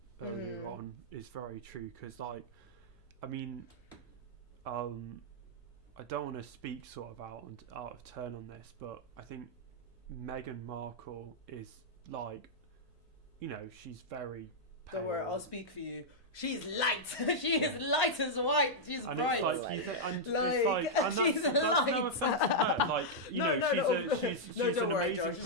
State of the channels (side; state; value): left; noise; hum, 29 dB below the sound